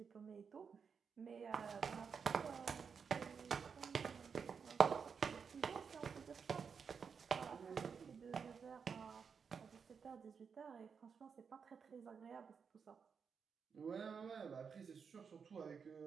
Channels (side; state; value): left; quieter; 6.2 dB